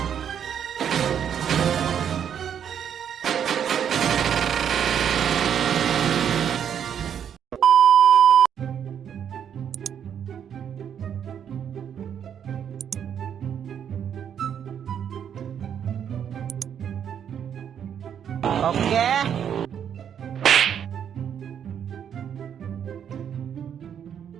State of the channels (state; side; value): quieter; left; 8.6 dB